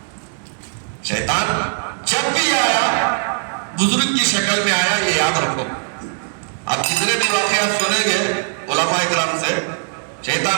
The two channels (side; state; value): left; silent; digital silence